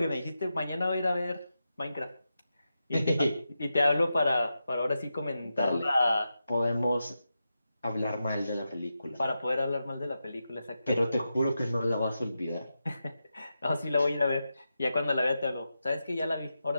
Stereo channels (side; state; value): both; inverted; correlation -0.89